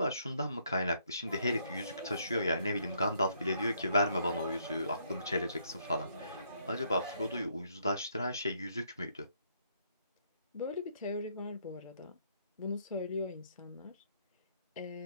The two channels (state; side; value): inverted; both; correlation -0.71